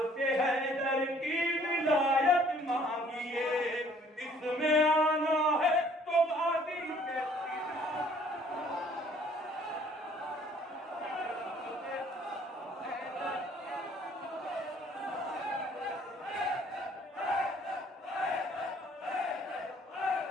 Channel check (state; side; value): normal; both; correlation 0.59